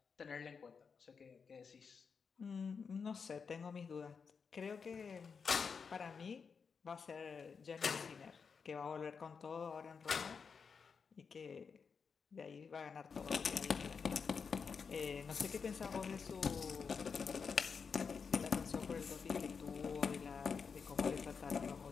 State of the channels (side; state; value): right; quieter; 5.7 dB